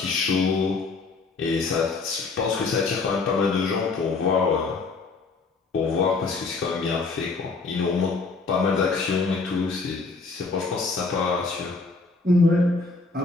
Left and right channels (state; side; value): quieter; right; 4.1 dB